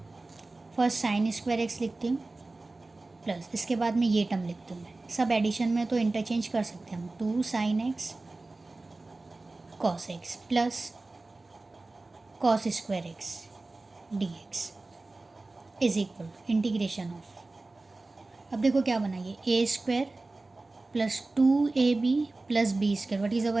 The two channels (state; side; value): quieter; left; 3.2 dB